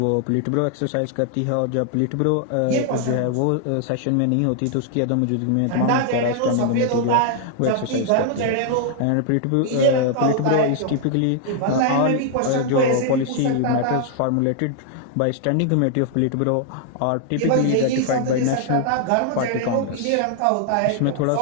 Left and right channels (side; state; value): both; different; correlation 0.00